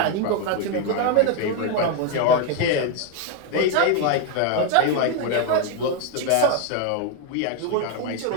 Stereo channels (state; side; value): different; both; correlation 0.01